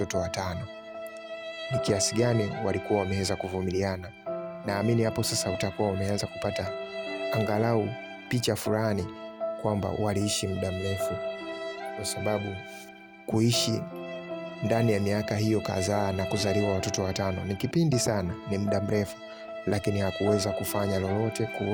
5. Ni kiasi gani walikuwa wameweza kuvumiliana. Naamini hapo sasa utakuwa umeanza kupata angalau picha fulani kwamba waliishi muda mrefu, kwa sababu kuishi ndani ya miaka hiyo kadhaa na kuzaliwa watoto 5 ni kipindi sana, ni muda mrefu, lakini hakuweza kufanya lolote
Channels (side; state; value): both; identical; correlation 1.00